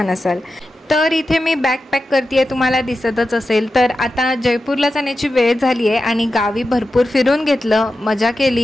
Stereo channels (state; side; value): normal; both; correlation 0.91